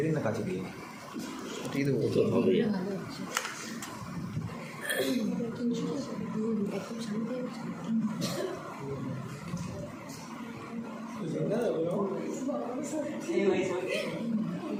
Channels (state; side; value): identical; both; correlation 1.00